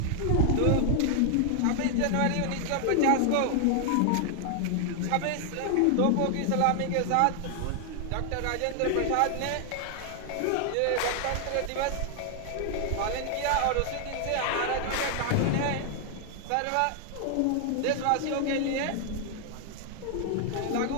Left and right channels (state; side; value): different; both; correlation 0.00